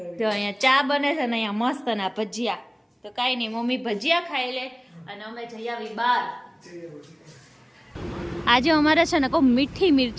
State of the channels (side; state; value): both; identical; correlation 1.00